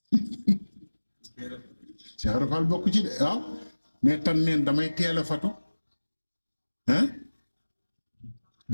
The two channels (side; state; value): both; inverted; correlation -1.00